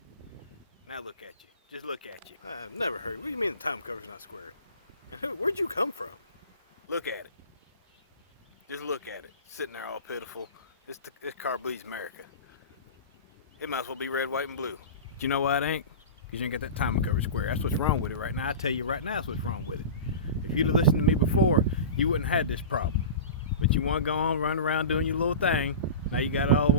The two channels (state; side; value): inverted; both; correlation -0.31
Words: Now look at you. Just look at you. I've never heard. What do you mean the timing cover's not square? And where'd you come from? Look at it. Just look at it. Sitting there all pitiful. This car bleeds America. It might as well be red, white, and blue. But you know why it ain't? Because you ain't got that timing cover square. That's what's wrong with it right now. I tell you right now that's what's wrong with it. If you'd have listened to me before, you wouldn't have had this problem. But you want to go on, run around doing your little thing. Now you got it all,